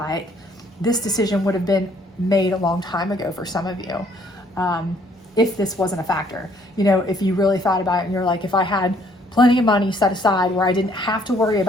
this decision would have been made a long time ago for some of you, if this wasn't a factor. If you really thought about it and you're like, if I had plenty of money set aside where I didn't have to worry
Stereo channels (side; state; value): both; normal; correlation 0.63